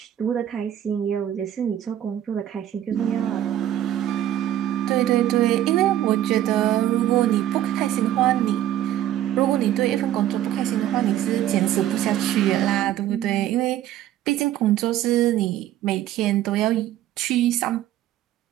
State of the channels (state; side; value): quieter; left; 12.1 dB